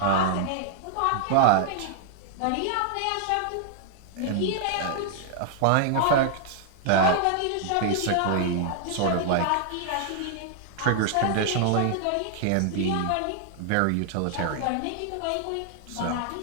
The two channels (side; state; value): both; different; correlation 0.00